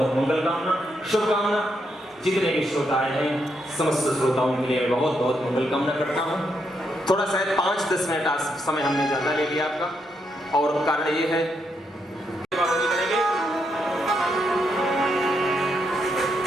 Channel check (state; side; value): normal; both; correlation 0.79